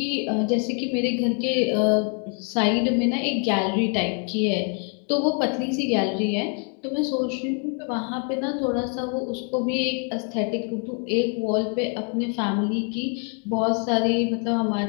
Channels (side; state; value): right; quieter; 39.4 dB